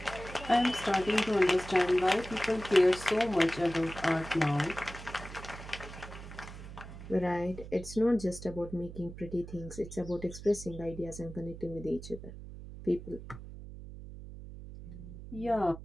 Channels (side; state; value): right; noise; hum, 13 dB below the sound